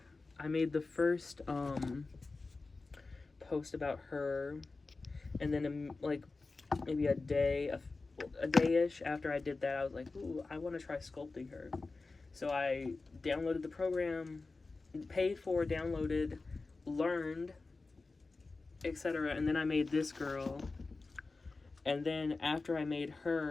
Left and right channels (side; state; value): right; quieter; 3.7 dB